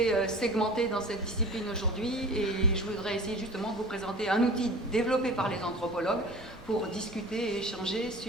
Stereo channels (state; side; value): normal; both; correlation 0.39